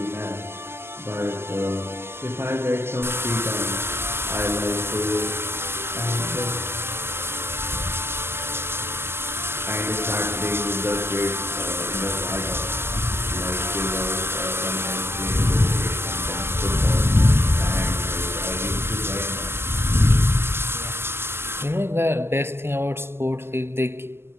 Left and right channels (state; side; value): late; left; 0.12 ms